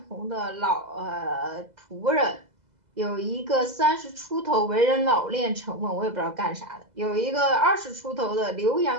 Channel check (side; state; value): left; late; 2.0 ms